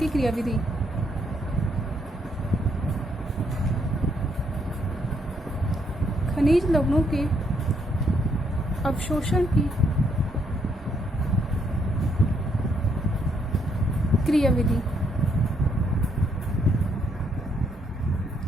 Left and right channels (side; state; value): both; normal; correlation 0.73